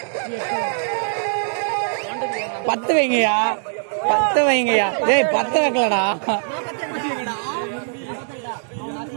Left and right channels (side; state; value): left; silent; digital silence